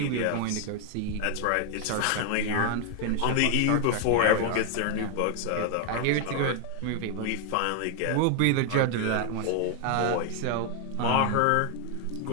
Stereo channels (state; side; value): different; both; correlation 0.00